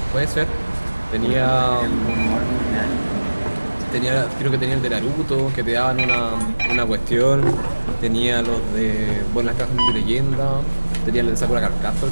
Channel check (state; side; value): inverted; both; correlation -1.00